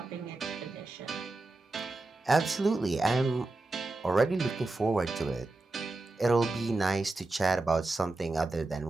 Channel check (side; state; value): left; quieter; 3.1 dB